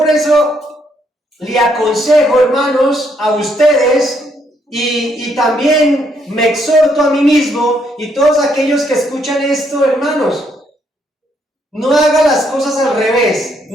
eso le aconsejo, hermanos, a ustedes, y también me exhorto a mí mismo, y todos aquellos que escuchan esto, hermanos, no haga las cosas al revés,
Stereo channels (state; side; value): normal; both; correlation 0.73